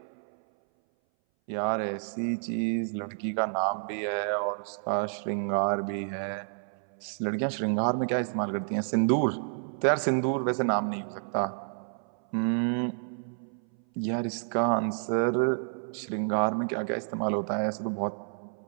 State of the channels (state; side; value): silent; left; 58 dB below the other